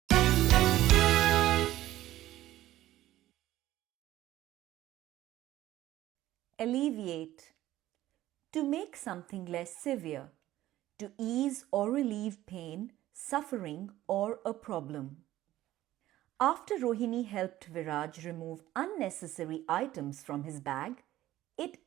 Alleviate. To make something less severe. To ease or relieve pain, suffering, or a problem. After Rohini helped Viraaj remove unnecessary items from his bag, it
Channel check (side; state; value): left; quieter; 14.7 dB